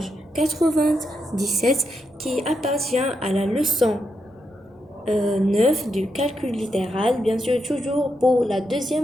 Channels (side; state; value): both; normal; correlation 0.83